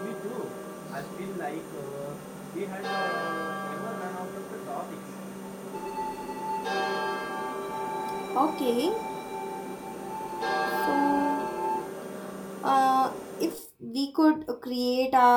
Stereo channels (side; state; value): both; identical; correlation 1.00